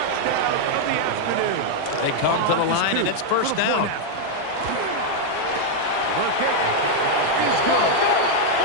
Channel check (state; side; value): different; both; correlation 0.00